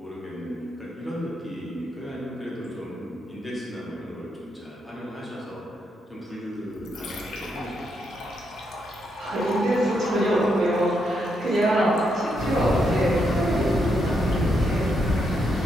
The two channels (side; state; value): both; normal; correlation 0.79